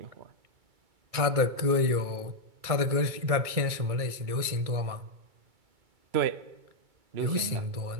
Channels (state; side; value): late; left; 2.3 ms